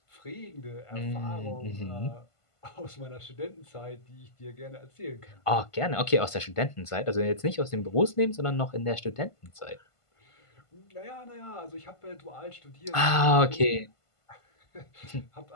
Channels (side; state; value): right; late; 1.5 ms